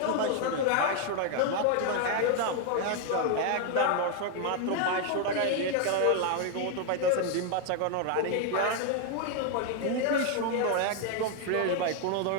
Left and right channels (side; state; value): both; different; correlation 0.00